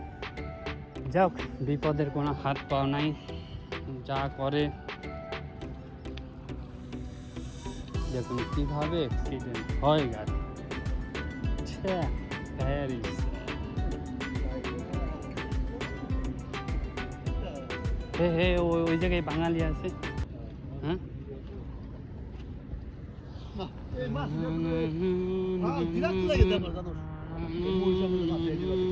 যাক, বিপদের কোনো হাত পাও নাই, যা করে দেখুন কিভাবে অ্যাক্সিডেন্ট হয় গাড়ি। হে ওই জায়গায় বাঙালি আছে। হ্যাঁ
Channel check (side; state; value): both; identical; correlation 1.00